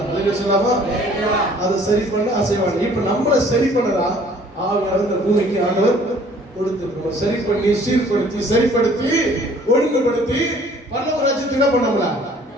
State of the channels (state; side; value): normal; both; correlation 0.55